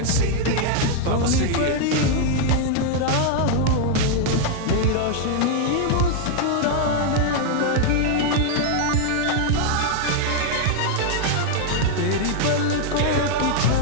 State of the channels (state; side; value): different; both; correlation 0.00